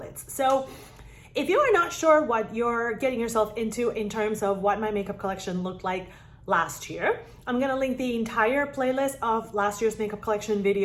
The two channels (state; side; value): identical; both; correlation 1.00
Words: So if you are not sure what you're getting yourself into in terms of what my makeup collection looked like last year, I'm gonna link the entire playlist of last year's makeup collection